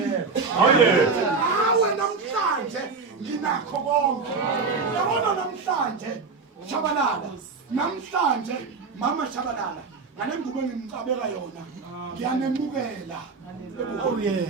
ngawe namhlanje nginakho konke. Yabona namhlanje Shabalala namhlanje mama Shabalala ngale ngubo engimcabeka yona ngiyanemukela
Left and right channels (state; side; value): quieter; left; 4.6 dB